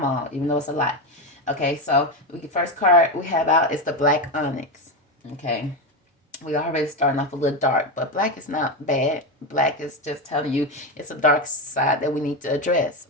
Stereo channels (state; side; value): normal; both; correlation 0.13